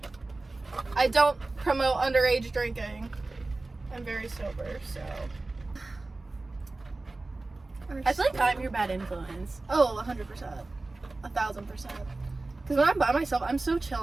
I don't promote underage drinking. I'm very sober, so. I feel like I'm your bad influence. Oh, 100%. 1,000%. Because when I'm by myself, I'm so chill.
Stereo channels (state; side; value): quieter; left; 3.2 dB